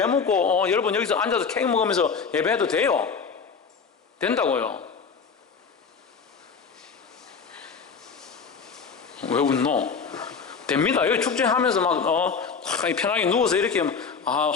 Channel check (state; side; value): quieter; right; 5.6 dB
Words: 먹고 여러분 여기서 앉아서 케이크 먹으면서 예배해도 돼요? 된다고요. 왜 웃노? 됩니다. 여기 축제하면서 막 편하게 누워서 이렇게